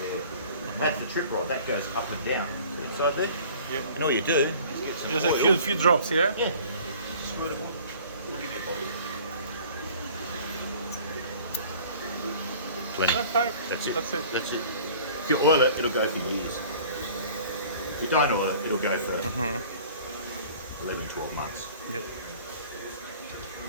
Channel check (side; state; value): both; inverted; correlation -0.48